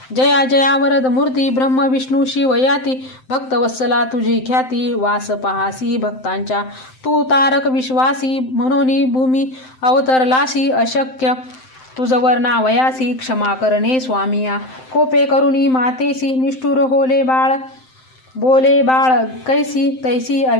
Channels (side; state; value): right; late; 7.7 ms